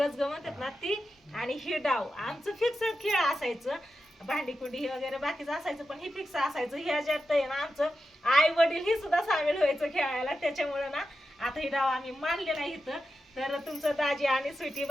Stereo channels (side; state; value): both; normal; correlation 0.90